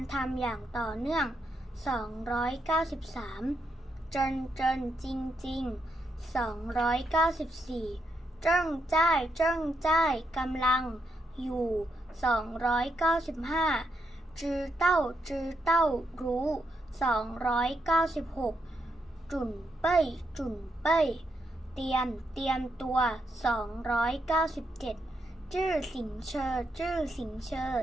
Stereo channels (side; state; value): both; normal; correlation 0.81